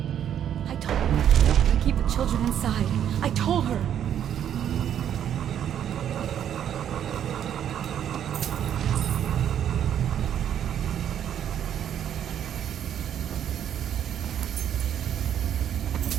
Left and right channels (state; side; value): quieter; left; 9.8 dB